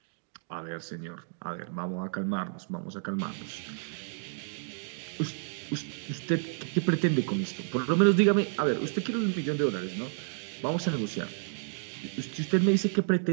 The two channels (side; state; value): left; silent; digital silence